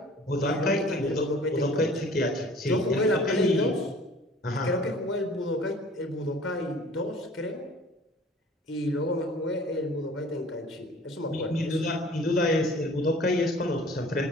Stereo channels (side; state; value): both; normal; correlation 0.49